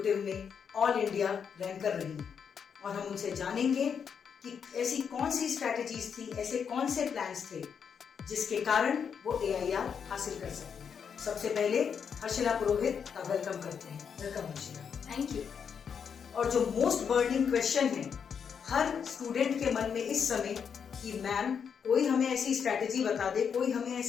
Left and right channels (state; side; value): quieter; right; 7.0 dB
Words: में ऑल इंडिया रैंक कर रही हैं, और हम उनसे जानेंगे कि ऐसी कौन सी स्ट्रैटेजीज थी, ऐसे कौन से प्लान्स थे जिसके कारण वो एआईआर हासिल कर सकते हैं। सबसे पहले हर्षिला पुरोहित का वेलकम करते हैं। वेलकम हर्षिला। Thank you. और जो मोस्ट बर्निंग क्वेश्चन है हर स्टूडेंट के मन में इस समय कि मैम कोई हमें ऐसी स्ट्रैटेजी बता दे, कोई हमें